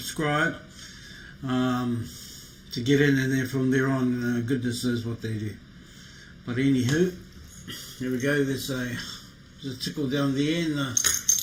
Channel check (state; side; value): identical; both; correlation 1.00